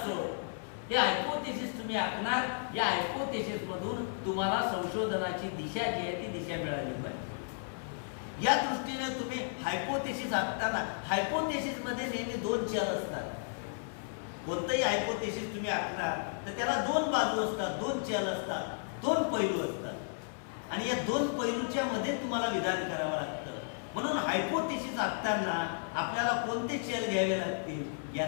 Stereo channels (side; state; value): right; silent; 55 dB below the other